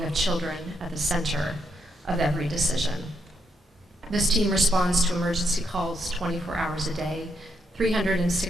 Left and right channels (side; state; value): both; normal; correlation 0.78